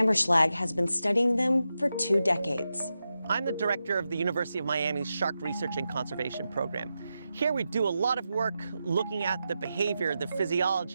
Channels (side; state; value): both; inverted; correlation -0.90